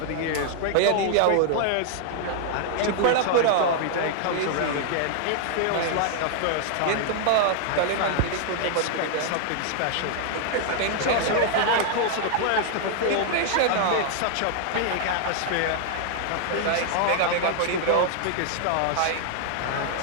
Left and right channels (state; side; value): different; both; correlation 0.00